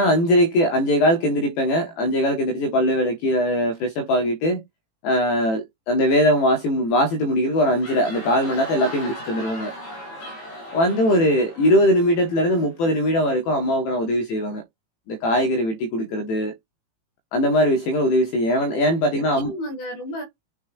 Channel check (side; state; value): right; late; 18 ms